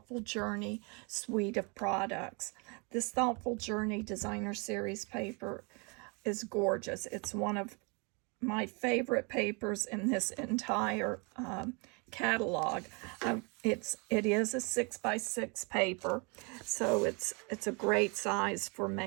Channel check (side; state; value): left; quieter; 31.9 dB